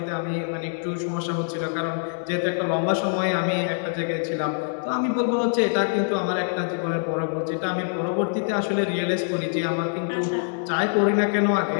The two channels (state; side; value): silent; right; digital silence